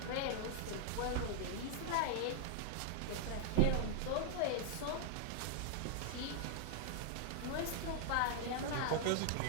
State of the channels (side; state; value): both; different; correlation 0.00